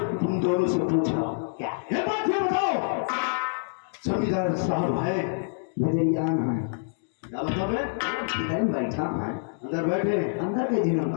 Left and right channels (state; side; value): silent; right; digital silence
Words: तुम दोनों से पूछ रहा हूँ, क्या ये बात ये बताओ, जमींदार साहब है नजरियान है? क्या मतलब है? इधर बैठा है, अंदर बैठे हैं, अंदर के दिनों